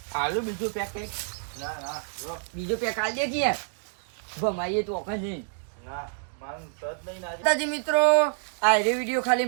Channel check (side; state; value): left; silent; 60 dB below the other